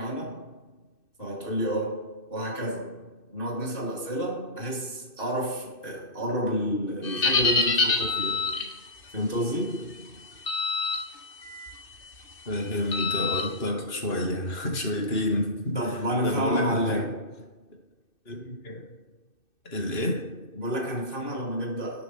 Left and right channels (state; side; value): late; right; 2.6 ms